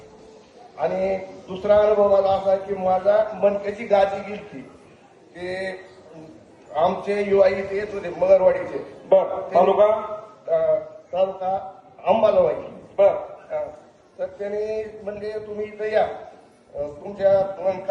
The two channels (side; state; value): both; identical; correlation 1.00